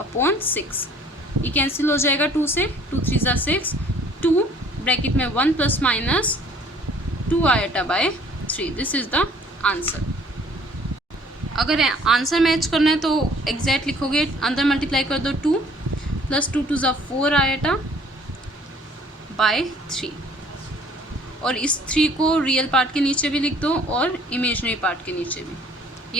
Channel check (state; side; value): normal; both; correlation 0.56